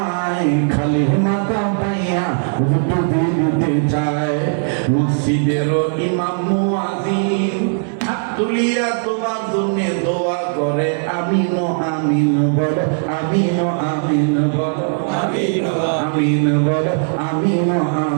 খালি মাথা পাইয়া হুজুর ডুবে দিতে চায়। মসজিদের ইমাম মুয়াজ্জিন হাত তুলিয়া তোমার জন্য দোয়া করে, আমিন আমিন বলো, আমিন আমিন বলো, আমিন আমিন বলো, আমিন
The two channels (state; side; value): silent; left; digital silence